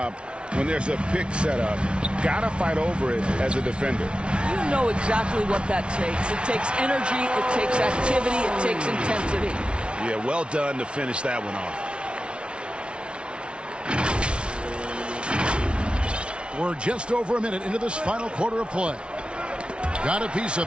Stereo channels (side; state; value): left; late; 0.058 ms